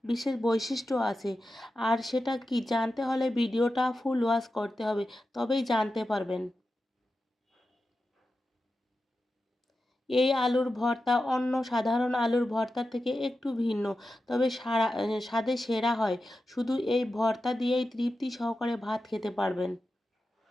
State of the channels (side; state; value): both; normal; correlation 0.91